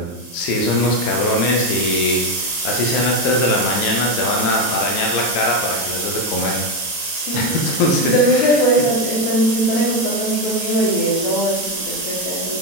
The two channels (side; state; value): right; late; 23 ms